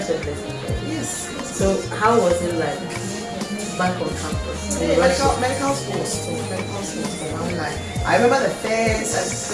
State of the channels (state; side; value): identical; both; correlation 1.00